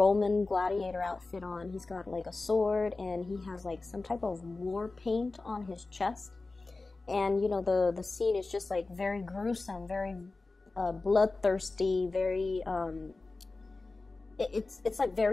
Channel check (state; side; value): quieter; right; 3.5 dB